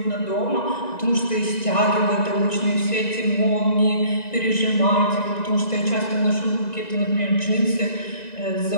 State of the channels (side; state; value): right; late; 1.9 ms